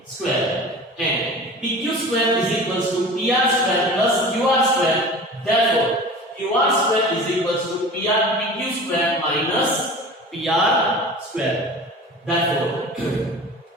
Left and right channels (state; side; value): normal; both; correlation 0.38